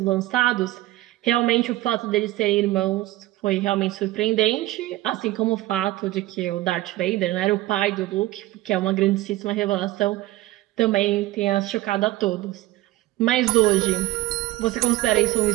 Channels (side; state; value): left; quieter; 17.0 dB